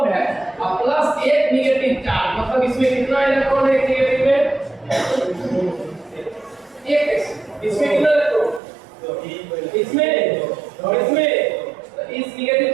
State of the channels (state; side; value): drops out; left; at 8.6 s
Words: है और प्लस 1 निगेटिव चार्ज। मतलब इसमें कितना इलेक्ट्रॉन है निगेटिव में 1, इसमें कितना इलेक्ट्रॉन, इसमें और इसमें, इस निगेटिव